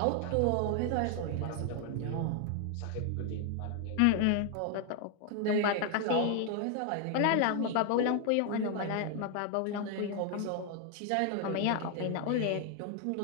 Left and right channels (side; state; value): both; different; correlation 0.00